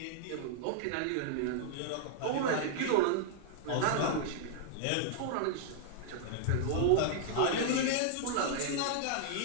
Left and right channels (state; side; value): different; both; correlation -0.01